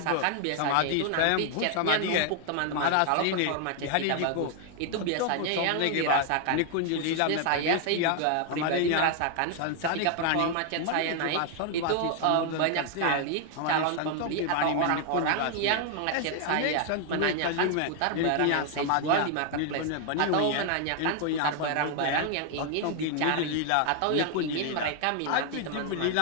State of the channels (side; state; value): both; different; correlation 0.00